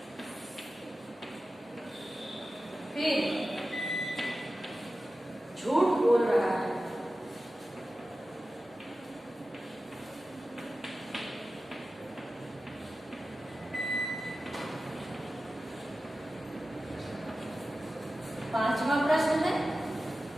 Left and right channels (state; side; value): normal; both; correlation 0.94